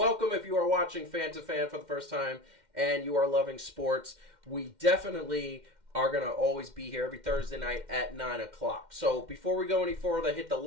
if you are watching Fan to Fan for the first time and you are loving sports. We definitely are going to always be here every Thursday night at 9 o'clock. So before we go any further, hit the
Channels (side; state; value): left; late; 2.1 ms